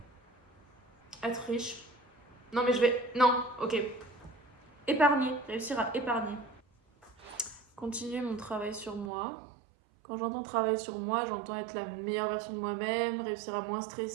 Être riche. Non, mais Non, ok. Épargner, réussir à épargner. Continuer mon travail sur moi. Quand j'entends travail sur moi, j'entends être la meilleure version de moi-même, réussir à moins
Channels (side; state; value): left; drops out; at 9.1 s